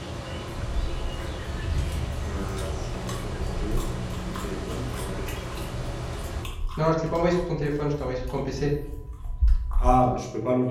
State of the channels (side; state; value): both; identical; correlation 1.00